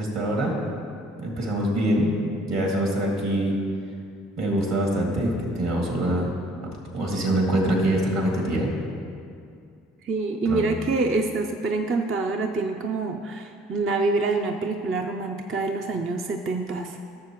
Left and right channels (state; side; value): normal; both; correlation 0.58